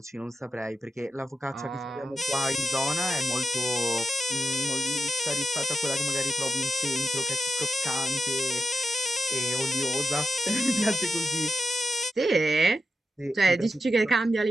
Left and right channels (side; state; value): both; normal; correlation 0.87